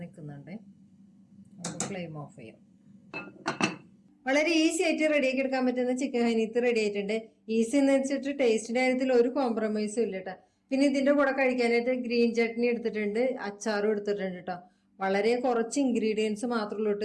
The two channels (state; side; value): identical; both; correlation 1.00